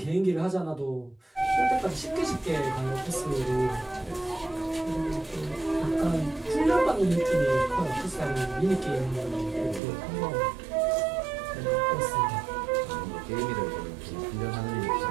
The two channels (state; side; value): drops out; left; at 9.8 s